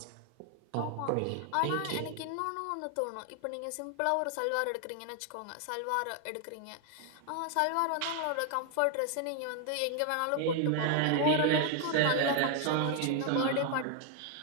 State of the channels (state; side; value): different; both; correlation 0.00